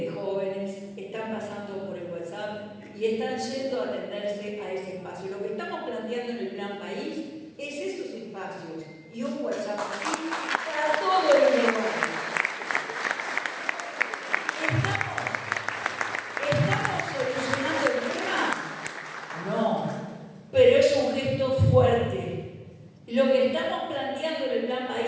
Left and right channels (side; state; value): both; identical; correlation 1.00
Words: de jóvenes están pasando por el WhatsApp y están yendo a atenderse a ese espacio. Lo que estamos planteando en el Plan País es esos espacios y un WhatsApp así para todos los lugares. ¿Estamos solucionando el tema? No, pero es un gesto fuerte. Lo que estamos planteando en el Plan